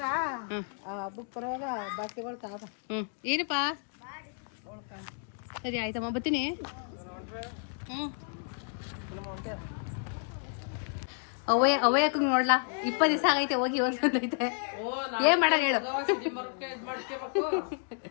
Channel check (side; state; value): right; silent; 57 dB below the other